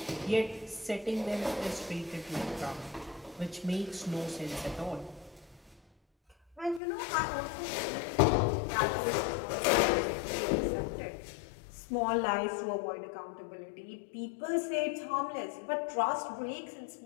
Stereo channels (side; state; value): right; drops out; at 6.8 s